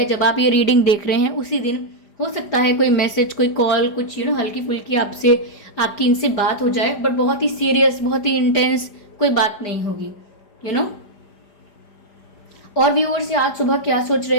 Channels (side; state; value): right; late; 4.9 ms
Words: जब आप ये रीडिंग देख रहे हैं उसी दिन हो सकता है कोई मैसेज, कोई कॉल, कुछ हल्की फुल्की आपकी इनसे बात हो जाए, बट बहुत ही सीरियस, बहुत ही इंटेंस कोई बात नहीं होगी। और व्यूअर्स, आज सुबह क्या सोच